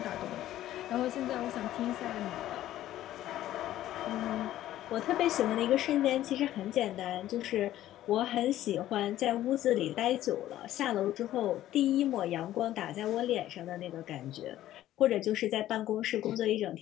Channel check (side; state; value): right; quieter; 13.5 dB